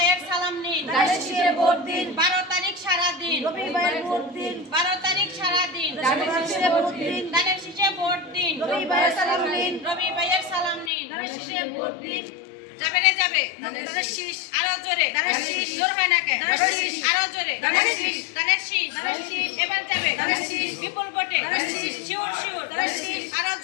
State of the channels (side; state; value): right; drops out; at 10.9 s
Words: সালাম নিন। ধানের শীষে ভোট দিন। 12 তারিখ সারা দিন। রবি ভাইয়ের ভোট দিন। 12 তারিখ সারা দিন। ধানের শীষে ভোট দিন। ধানের শীষে ভোট দিন। রবি ভাইয়ের সালাম নিন। রবি ভাইয়ের সালাম নিন। ধানের শীষে ভোট দিন। যাবে রে যাবে। ধানের শীষ। আরো জোরে। ধানের শীষ। জোর হয় না কে? ধানের শীষ। আরো জোরে। ধানের শীষ। ধানের শীষ। ধানের শীষ। এবার যাবে। ধানের শীষ। বিপুল ভোটে। ধানের শীষ। Sure sure. ধানের শীষ। আরো